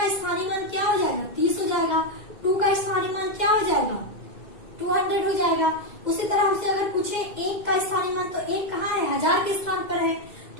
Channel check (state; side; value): late; right; 2.1 ms